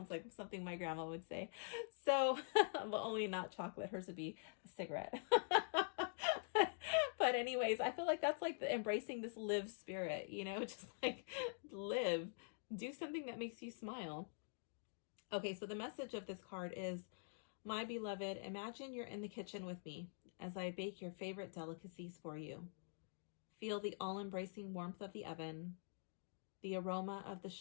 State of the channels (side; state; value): right; silent; digital silence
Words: like something my grandma would say. So, well, only not chocolate. Hers would be a cigarette. But anyways, I feel like that's like embracing this live spirit, you know, just like live, do something that makes you smile. Okay, so the message of this card is, my beloved, imagine you're in the kitchen with me as I bake your favorite delicacies for you. Feel the all-embracing warmth of the oven, the aroma of the